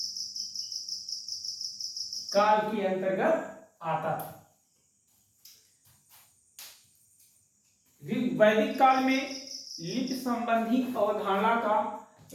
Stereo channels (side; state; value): both; identical; correlation 1.00